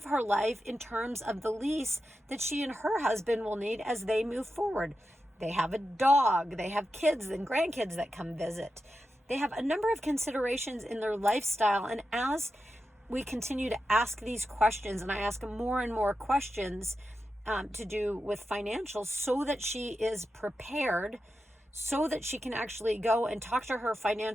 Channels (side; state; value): both; normal; correlation 0.90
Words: her life in terms of the lease that she and her husband will need as they move forward. They have a dog, they have kids and grandkids that come visit. They have a number of considerations in their lifestyle. And as we continue to ask these questions, and I ask more and more questions to do with financials so that she is prepared, so that she can actually go and talk to her